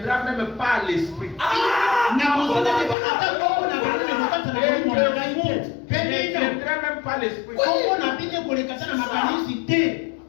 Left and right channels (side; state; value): right; drops out; at 3.0 s